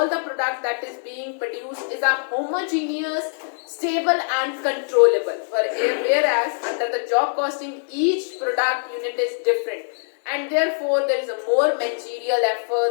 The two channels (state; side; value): silent; right; digital silence